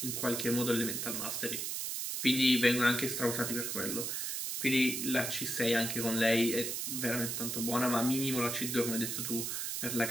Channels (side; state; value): right; noise; hiss, 2 dB below the sound